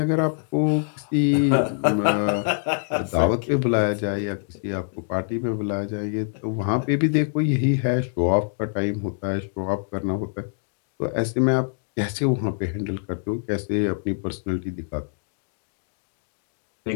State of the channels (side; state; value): right; silent; digital silence